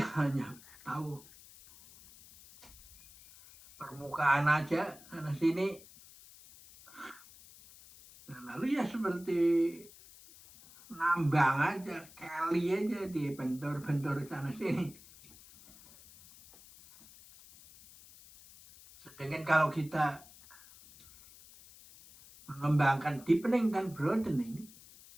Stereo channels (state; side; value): noise; left; hiss, 21 dB below the sound